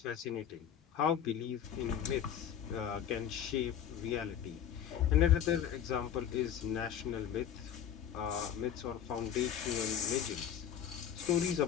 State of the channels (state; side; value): quieter; right; 9.2 dB